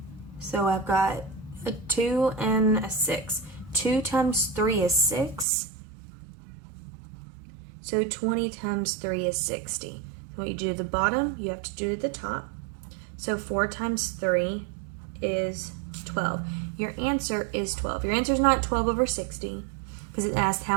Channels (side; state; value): left; drops out; at 5.5 s